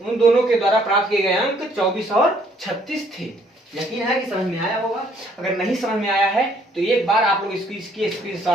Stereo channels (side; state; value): both; normal; correlation 0.64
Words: दोनों के द्वारा प्राप्त किए गए अंक 24 और 36 थे। यकीन है कि समझ में आया होगा। अगर नहीं समझ में आया है तो एक बार आप लोग इसकी